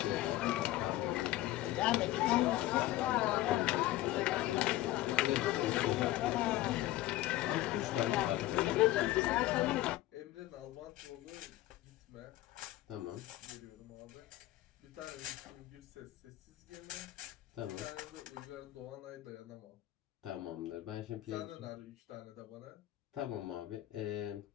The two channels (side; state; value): right; quieter; 15.9 dB